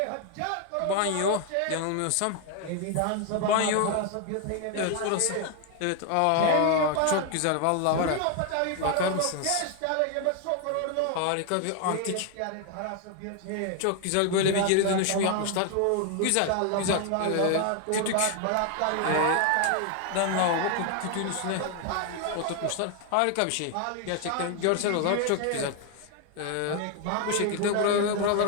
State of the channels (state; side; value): different; both; correlation 0.01